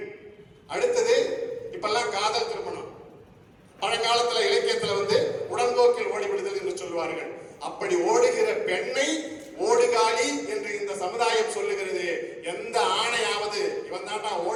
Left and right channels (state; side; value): identical; both; correlation 1.00